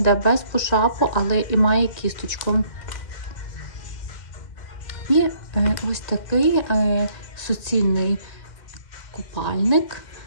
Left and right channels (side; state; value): right; late; 2.1 ms